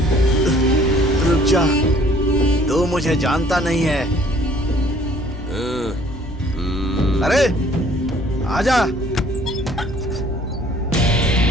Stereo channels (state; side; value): normal; both; correlation 0.57